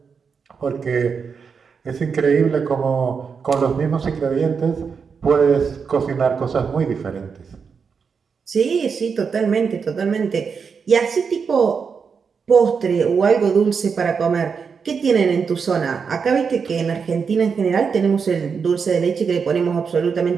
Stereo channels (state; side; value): quieter; left; 5.9 dB